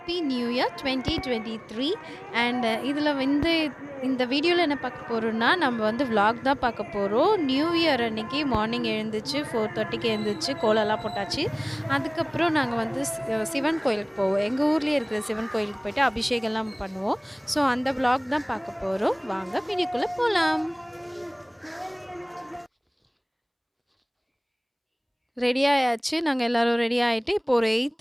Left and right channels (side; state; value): both; identical; correlation 1.00